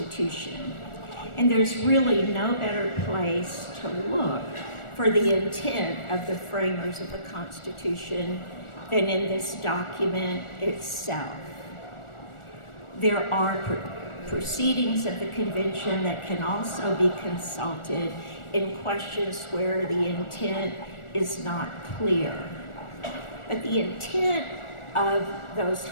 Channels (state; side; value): late; right; 1.4 ms